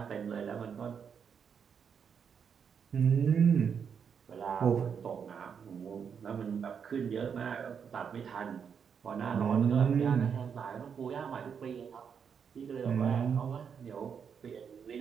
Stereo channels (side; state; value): left; quieter; 7.0 dB